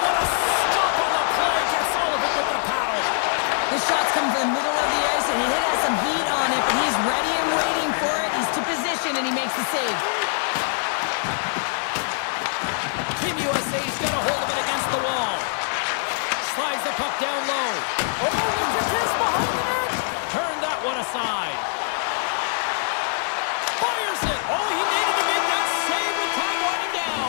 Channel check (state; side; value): silent; right; 63 dB below the other